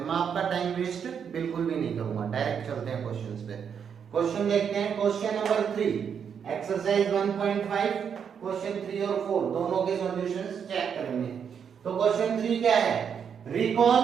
मैं आपका टाइम वेस्ट बिल्कुल भी नहीं करूंगा, डायरेक्ट चलते हैं क्वेश्चंस पे। क्वेश्चन देखते हैं। क्वेश्चन नंबर 3 एक्सरसाइज 1.5 क्वेश्चन 3 और 4 दोनों के सॉल्यूशंस चेक करेंगे। तो क्वेश्चन 3 क्या है? Recall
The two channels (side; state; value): left; quieter; 7.4 dB